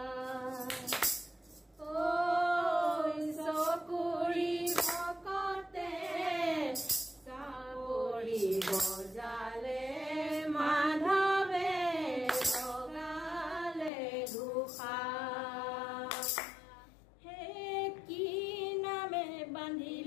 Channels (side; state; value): right; drops out; at 13.9 s